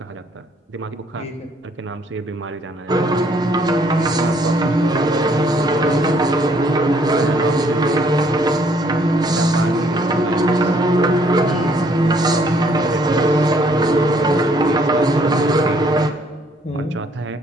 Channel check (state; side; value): normal; both; correlation 0.65